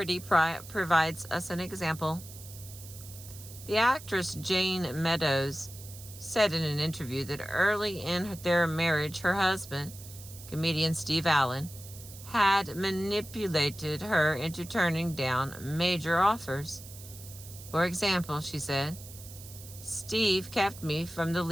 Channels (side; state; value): right; noise; hiss, 16 dB below the sound